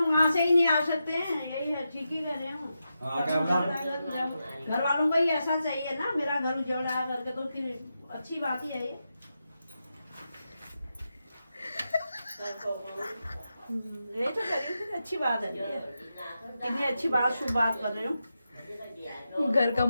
वहाँ से ही नहीं आ सकते हैं, यही है, ठीक ही कह रहे हो। घर वालों को ही ऐसा चाहिए ना, मेरा घर उजड़ रहा है करके, तो फिर अच्छी बात ही है ये। ये तो करिए, फिर अच्छी बात है ये। कितनी अच्छी बात, शुभ बात कर रहे हो। घर का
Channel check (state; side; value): inverted; both; correlation -0.88